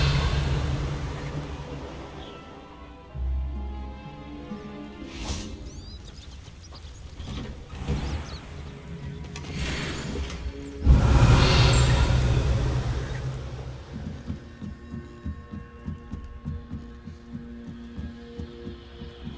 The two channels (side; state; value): both; identical; correlation 1.00